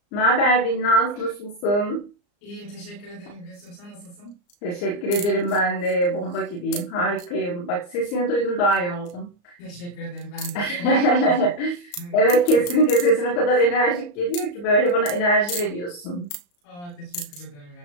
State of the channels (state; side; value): late; right; 34 ms